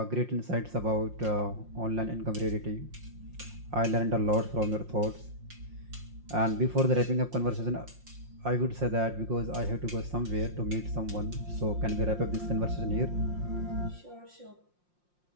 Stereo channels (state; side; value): late; left; 5.6 ms